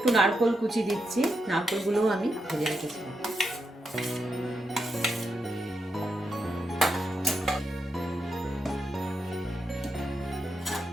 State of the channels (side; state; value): both; normal; correlation 0.84